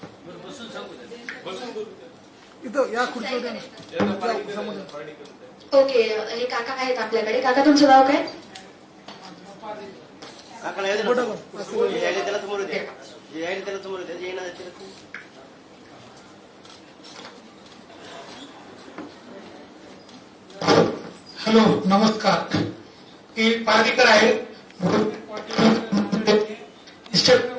इथं या खुर्चीवर ओके, हे काका आहेत आपल्याकडे. काका तुमचं नाव काय? हॅलो, नमस्कार. मी पार्टीकर आहे.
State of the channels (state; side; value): identical; both; correlation 1.00